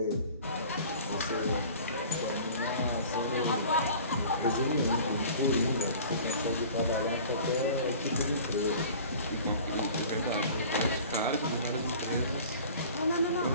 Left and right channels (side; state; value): both; inverted; correlation -0.44